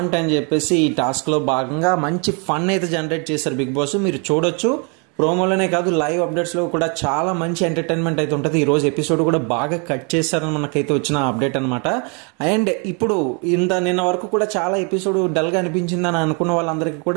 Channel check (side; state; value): left; quieter; 35.3 dB